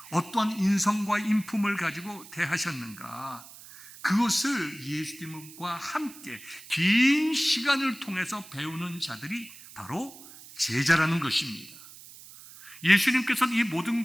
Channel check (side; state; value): right; noise; hiss, 18 dB below the sound